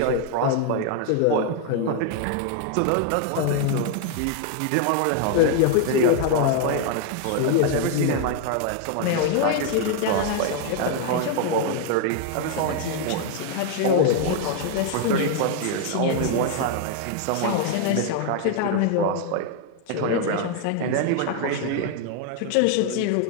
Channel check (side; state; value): both; different; correlation 0.00